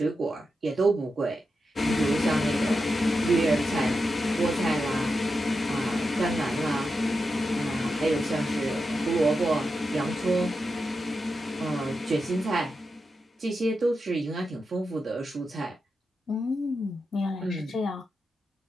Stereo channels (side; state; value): both; normal; correlation 0.88